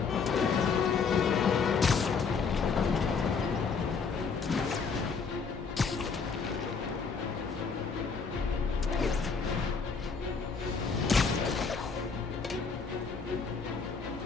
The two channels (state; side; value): quieter; right; 5.3 dB